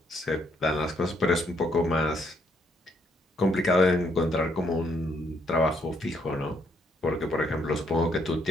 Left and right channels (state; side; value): normal; both; correlation 0.72